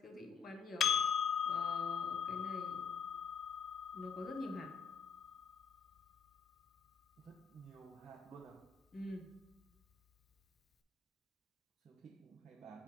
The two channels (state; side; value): quieter; right; 6.7 dB